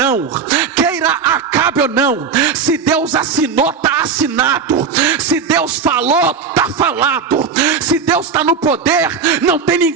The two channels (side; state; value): left; quieter; 5.8 dB